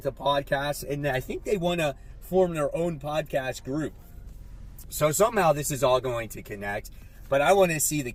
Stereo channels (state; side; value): identical; both; correlation 1.00